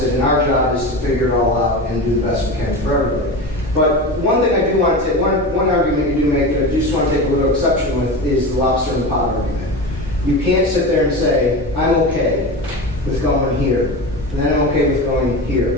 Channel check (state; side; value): normal; both; correlation 0.26